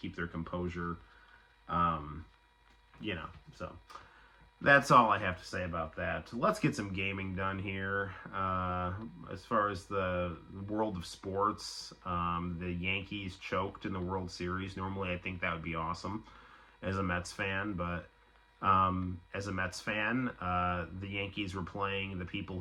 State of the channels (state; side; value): identical; both; correlation 1.00